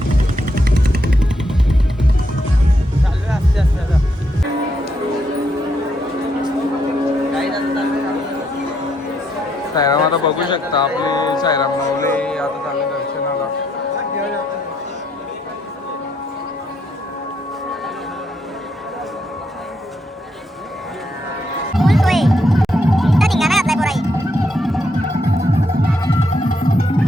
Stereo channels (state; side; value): normal; both; correlation 0.76